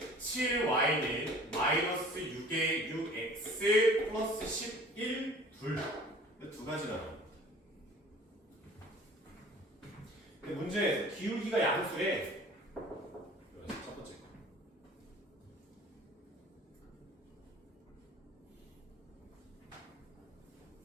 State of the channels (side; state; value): both; normal; correlation 0.47